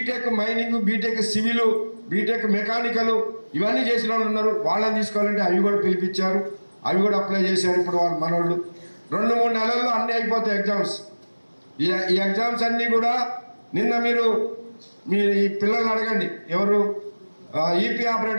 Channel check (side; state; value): both; inverted; correlation -1.00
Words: mining, BTech civil, BTech mechanical ఇవన్నీ చేసిన వాళ్ళు ఉన్నారు, వాళ్ళని తీసుకోవాలంటే అవి కూడా పిలిపించారు. అవి కూడా అప్లై చేశారు. ఇప్పుడు వాళ్ళు మనోళ్ళు 2-3 నెలల్లో అన్నీ అయిపోతాయి ఎగ్జామ్స్. ఈ ఎగ్జామ్స్ అన్నీ కూడా నిన్న మీరు ఈ పిల్లల్ని అడగండి, ఎవరు ఈపీ